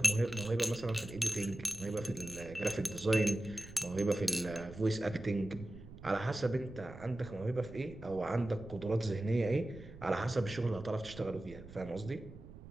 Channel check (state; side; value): noise; right; rumble, 16 dB below the sound